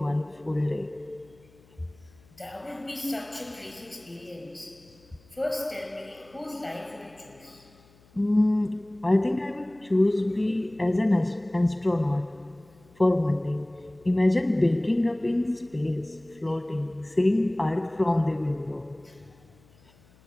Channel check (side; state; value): left; noise; hum, 29 dB below the sound